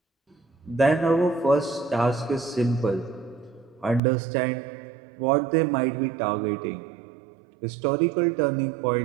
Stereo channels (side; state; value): left; drops out; at 4.0 s